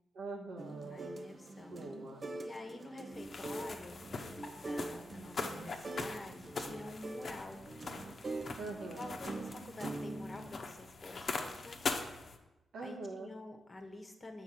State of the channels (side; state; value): both; normal; correlation 0.86